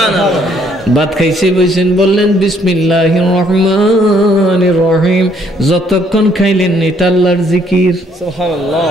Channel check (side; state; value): both; normal; correlation 0.67